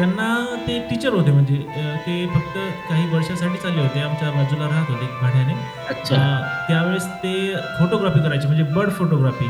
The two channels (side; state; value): both; identical; correlation 1.00